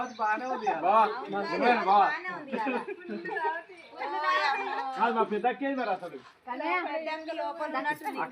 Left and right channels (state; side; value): identical; both; correlation 1.00